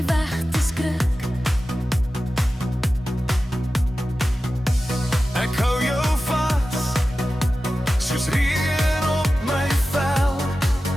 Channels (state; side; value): normal; both; correlation 0.94